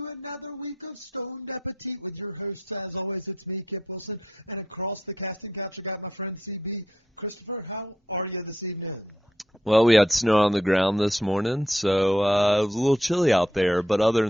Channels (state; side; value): normal; both; correlation 0.77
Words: another week of Stoned Appetit with your hosts. As always, it's me, Kip Wilson, and across the casting couch, I got my friend CB. Christopher, how are you this evening? Well, we had snow on the ground this morning, so it was a little chilly out there. But other